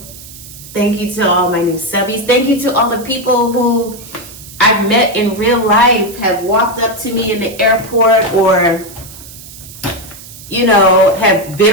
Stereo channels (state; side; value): noise; right; hiss, 17 dB below the sound